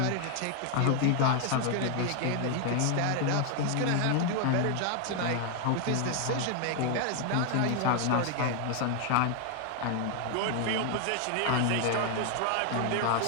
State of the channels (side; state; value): both; different; correlation 0.00